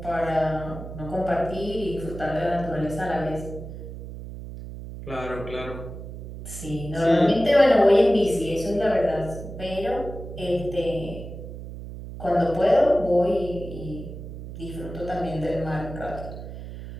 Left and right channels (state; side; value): noise; right; hum, 11 dB below the sound